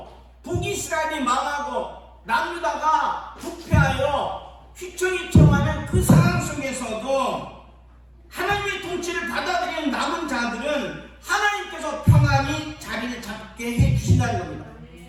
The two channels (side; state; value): both; identical; correlation 1.00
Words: 북이스라엘이 망하고 남유다가 부패하여 휘청휘청하는 그 상황 속에서도 하나님의 통치를 받아들이는 남은 자들은 하나님께서 평안히 자리를 잡게 해주신다는 겁니다.